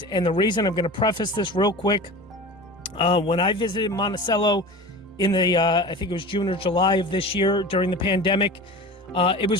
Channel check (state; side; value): normal; both; correlation 0.34